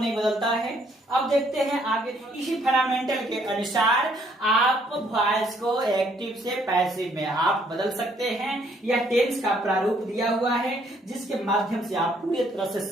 बदलता है। अब देखते हैं आगे। इसी फंडामेंटल के अनुसार आप वॉइस को एक्टिव से पैसिव में आप बदल सकते हैं। यह टेंस का प्रारूप दिया हुआ है, जिसके माध्यम से आप पूरी तरह से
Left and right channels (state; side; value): normal; both; correlation 0.67